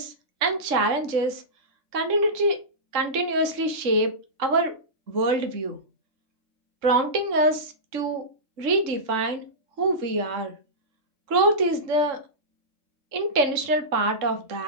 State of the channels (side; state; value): left; late; 3.6 ms